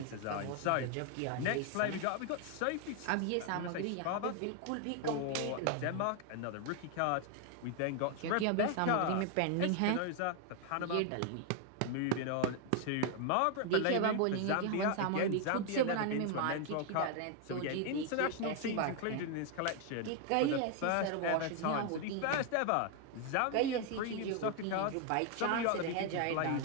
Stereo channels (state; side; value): different; both; correlation 0.01